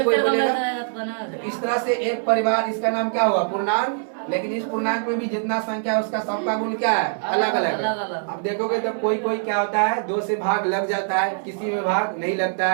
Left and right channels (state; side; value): silent; left; digital silence